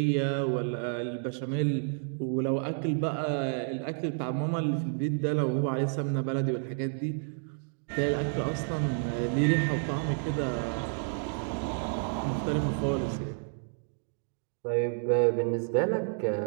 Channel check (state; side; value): silent; left; 58 dB below the other